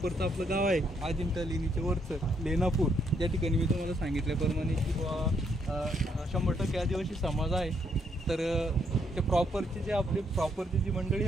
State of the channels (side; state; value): both; normal; correlation 0.73